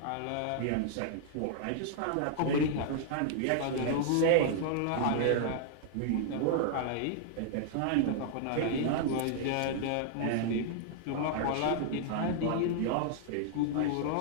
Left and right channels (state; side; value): different; both; correlation -0.01